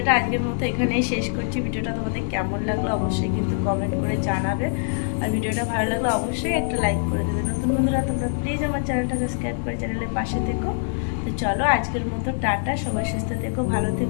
আজকের মতো এখানেই শেষ করছি। ভিডিওটা তোমাদের কেমন লাগলো অবশ্যই কিন্তু কমেন্ট করে জানাবে, আর ভিডিওটা ভালো লাগলে অবশ্যই একটা লাইক করে দেবে। নতুন বন্ধুরা তোমরা প্লিজ আমার চ্যানেলটা সাবস্ক্রাইব করে চ্যানেলের পাশে থেকো। তো চলো আজকের মতো টাটা, সবাই সুস্থ থেকো, ভালো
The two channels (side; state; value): right; silent; 63 dB below the other